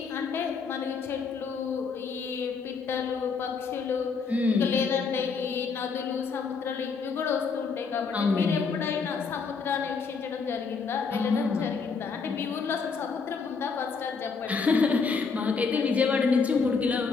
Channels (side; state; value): right; quieter; 5.2 dB